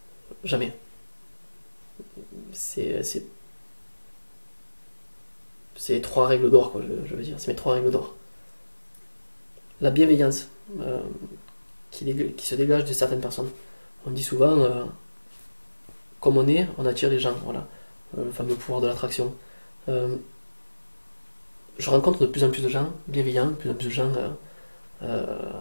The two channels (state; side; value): inverted; both; correlation -1.00